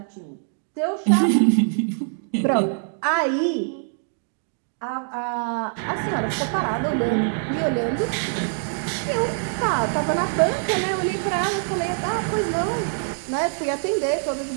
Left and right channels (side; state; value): left; silent; 63 dB below the other